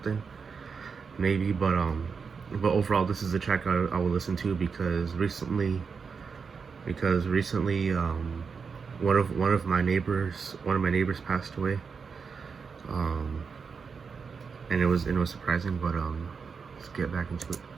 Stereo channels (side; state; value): left; quieter; 5.6 dB